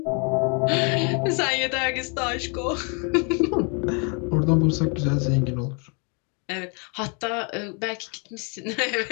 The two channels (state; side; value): quieter; right; 35.8 dB